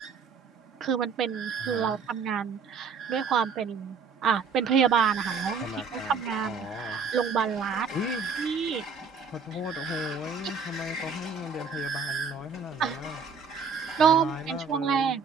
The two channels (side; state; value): left; quieter; 5.5 dB